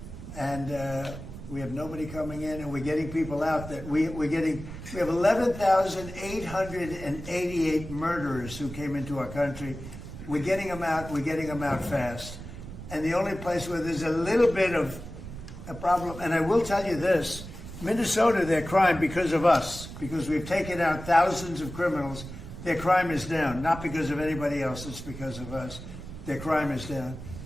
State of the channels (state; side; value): noise; right; rumble, 11 dB below the sound